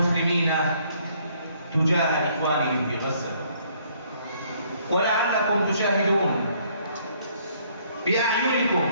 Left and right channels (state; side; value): inverted; both; correlation -0.64